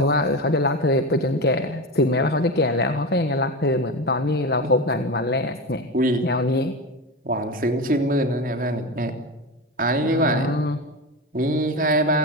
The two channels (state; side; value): normal; both; correlation 0.22